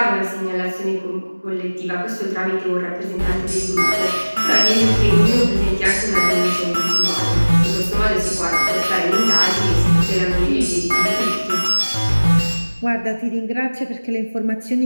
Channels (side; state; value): both; inverted; correlation -1.00